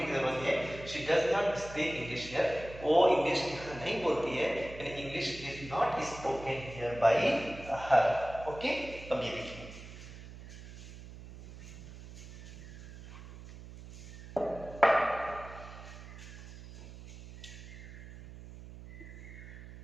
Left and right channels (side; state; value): right; noise; hum, 14 dB below the sound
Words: की जरूरत है। She does not speak English here, वो इंग्लिश नहीं बोलती है, यानी English is not spoken here bye her. Okay. अब ये देखिए